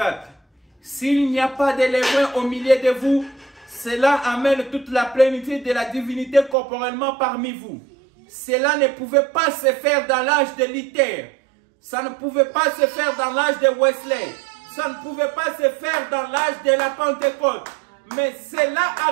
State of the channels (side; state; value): left; drops out; at 6.6 s